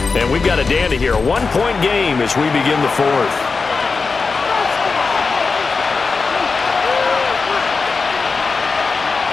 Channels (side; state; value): right; quieter; 4.5 dB